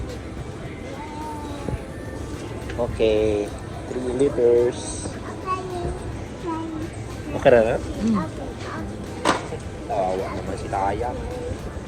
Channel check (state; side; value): identical; both; correlation 1.00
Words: Okay. 3 liters. Okay na na? Tawa naman si Taya.